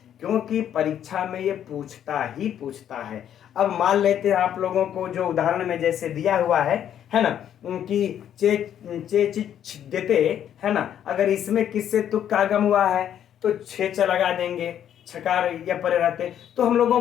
क्योंकि परीक्षा में ये पूछता ही पूछता है। अब मान लेते हैं आप लोगों को जो उदाहरण में जैसे दिया हुआ है ना, कि देते है ना, अगर इसमें किससे तुक का आगम हुआ है तो 6 च लगा देंगे, छकार या परे रहते। तो हम लोगों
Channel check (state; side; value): quieter; right; 10.0 dB